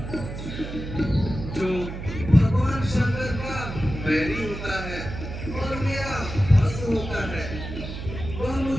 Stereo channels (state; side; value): noise; right; hum, 8 dB below the sound